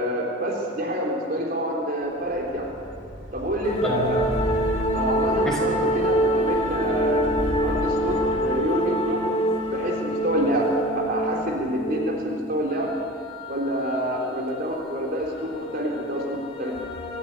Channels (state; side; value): normal; both; correlation 0.37